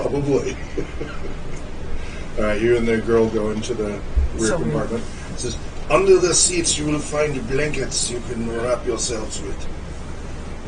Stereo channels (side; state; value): both; identical; correlation 1.00